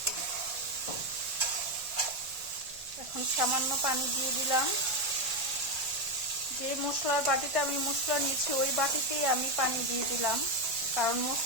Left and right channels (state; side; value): late; left; 1.6 ms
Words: এখন সামান্য পানি দিয়ে দিলাম। যে মশলার বাটিতে আমি মশলা নিয়েছি ওই বাটিতেই আমি পানি দিয়ে দিলাম, কারণ